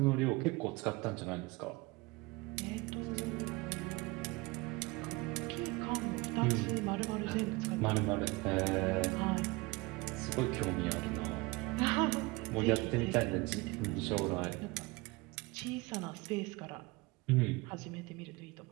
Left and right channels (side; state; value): left; quieter; 23.9 dB